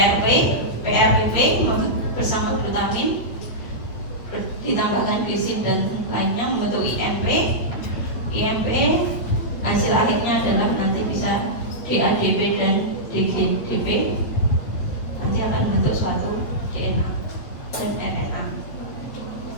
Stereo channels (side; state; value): right; late; 8.4 ms